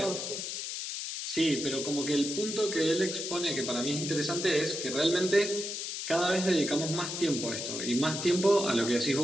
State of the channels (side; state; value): left; noise; hiss, 5 dB below the sound